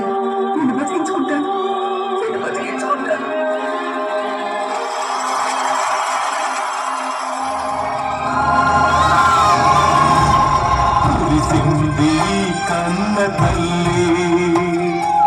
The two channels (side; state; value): both; identical; correlation 1.00